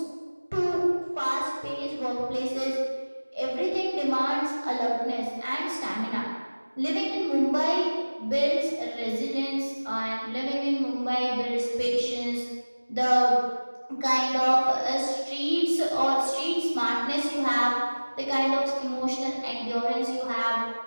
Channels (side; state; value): both; inverted; correlation -1.00